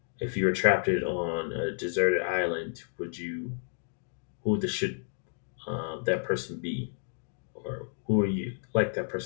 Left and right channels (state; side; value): silent; right; digital silence